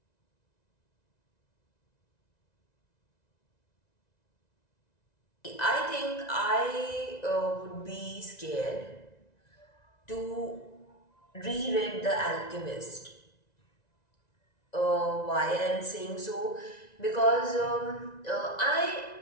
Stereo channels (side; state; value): right; late; 1.9 ms